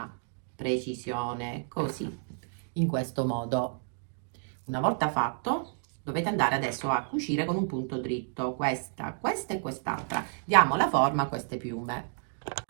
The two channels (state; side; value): silent; left; digital silence